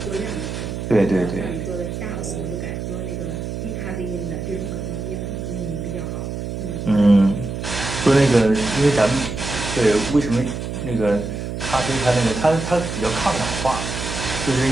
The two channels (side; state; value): right; noise; hum, 5 dB below the sound